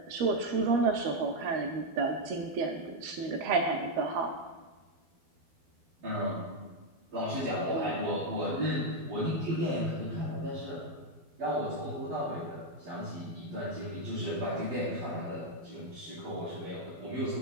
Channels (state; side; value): late; left; 12 ms